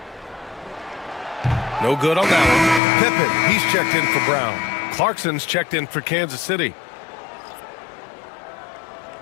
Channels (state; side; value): drops out; right; at 2.8 s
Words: No good on that one. Pippen, he's checked in for Brown. Clarkson's checked in for Kansas City.